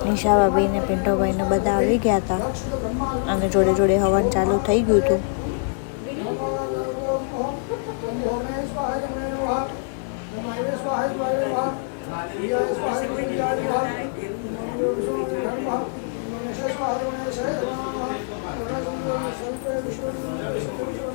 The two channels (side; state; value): right; silent; digital silence